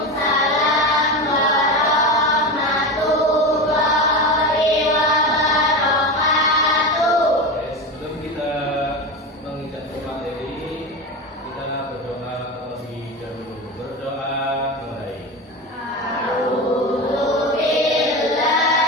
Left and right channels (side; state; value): both; normal; correlation 0.22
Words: warahmatullahi wabarakatuh. Sebelum kita menginjak materi, kita berdoa terlebih dahulu. Berdoa mulai.